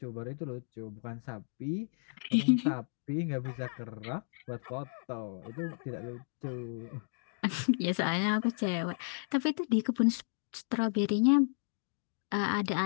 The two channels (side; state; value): right; silent; digital silence